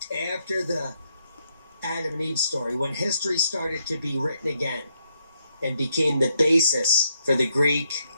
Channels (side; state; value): both; inverted; correlation -0.77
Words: After the Adam and Eve story, when history started to be written again and became the basis for the Greek,